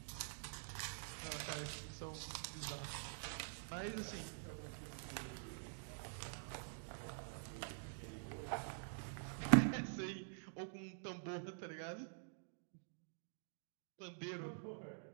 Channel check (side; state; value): left; silent; digital silence